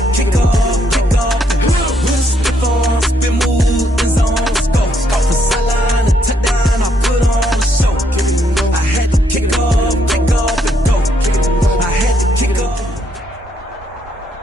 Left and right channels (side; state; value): both; normal; correlation 0.73